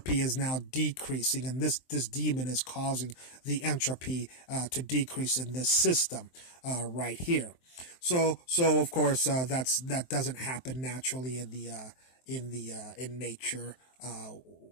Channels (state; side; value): late; right; 23 ms